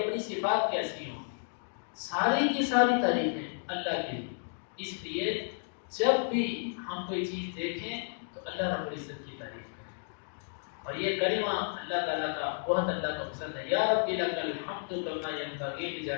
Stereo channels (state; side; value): silent; right; digital silence